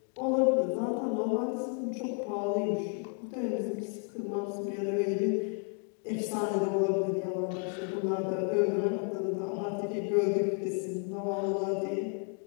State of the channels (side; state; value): right; quieter; 36.9 dB